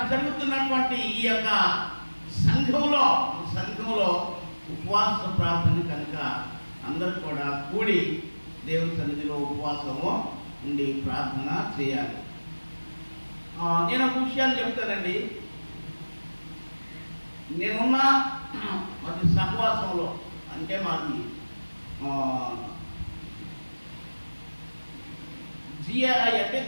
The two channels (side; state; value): both; inverted; correlation -1.00